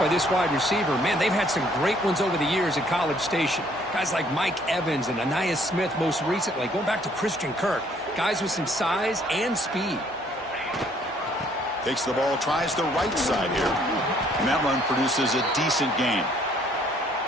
this wide receiver. Man, they've had some great ones over the years at College Station. Guys like Mike Evans and Anais Smith most recently, going back to Christian Kirk. Guys with some size and speed. Takes the ball, tries the right side here. And that run produces a decent gain.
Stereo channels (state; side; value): normal; both; correlation 0.63